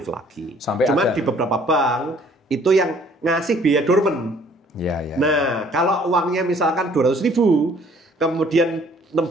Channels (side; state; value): both; normal; correlation 0.59